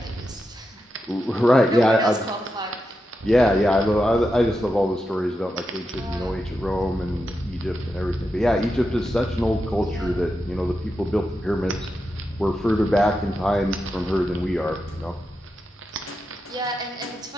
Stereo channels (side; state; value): both; normal; correlation 0.88